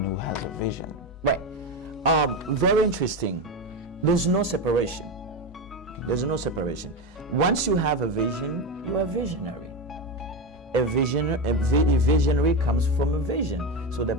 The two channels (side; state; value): both; normal; correlation 0.17